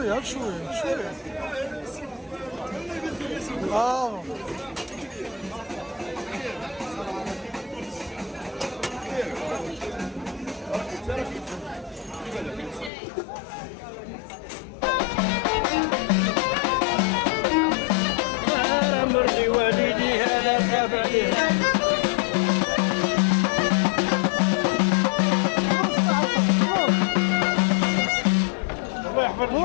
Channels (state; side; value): drops out; right; at 12.9 s